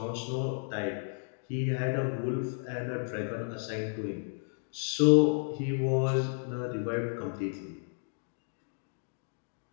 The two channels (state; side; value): silent; right; digital silence